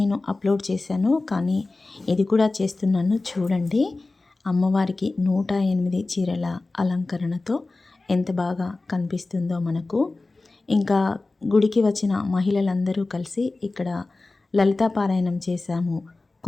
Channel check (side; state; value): right; quieter; 3.3 dB